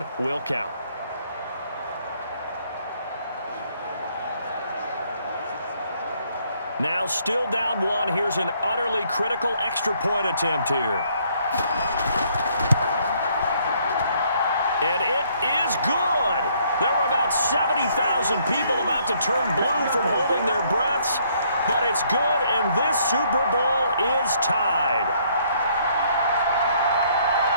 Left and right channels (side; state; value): both; inverted; correlation -0.67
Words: will count. Now still down 1. Here's an utterly critical extra point attempt here. And it is good. There were about 70,000 people about to turn blue from holding their breaths. But it's good, and this Super Bowl is tied.